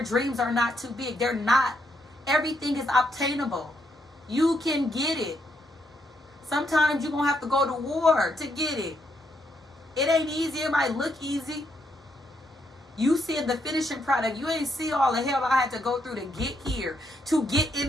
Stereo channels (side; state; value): both; normal; correlation 0.77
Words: dreams are not too big. They're not. Everything is obtainable. You can get it. Sometimes you're going to have to go to war to get it. It ain't easy. It might look easy. You see the finishing product. You ain't see all the hell I had to go through to get here, to get